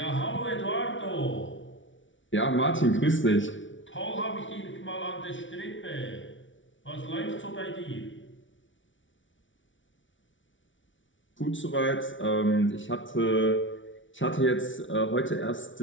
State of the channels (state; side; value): late; right; 0.56 ms